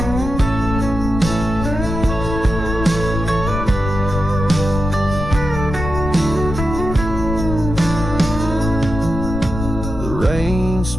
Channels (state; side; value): noise; left; rumble, 6 dB below the sound